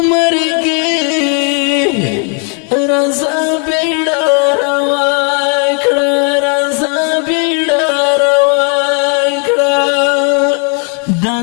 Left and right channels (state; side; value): quieter; right; 39.8 dB